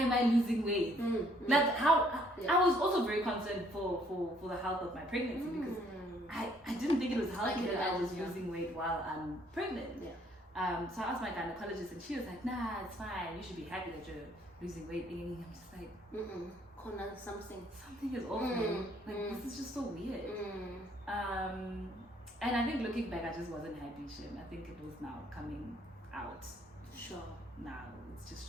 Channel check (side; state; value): both; normal; correlation 0.64